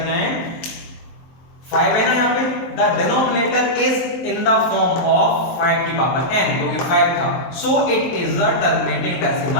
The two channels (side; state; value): right; late; 23 ms